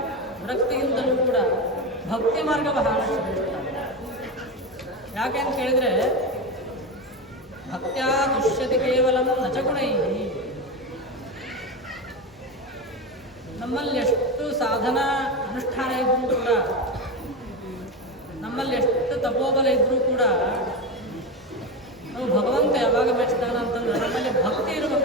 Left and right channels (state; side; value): normal; both; correlation 0.19